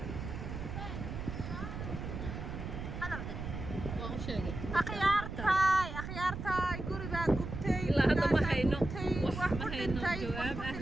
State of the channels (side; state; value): right; noise; rumble, 6 dB below the sound